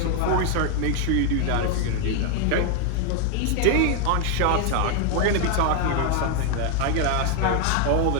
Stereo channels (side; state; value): both; different; correlation 0.01